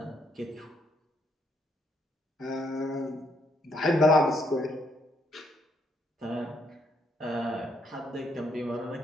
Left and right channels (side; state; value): both; normal; correlation 0.74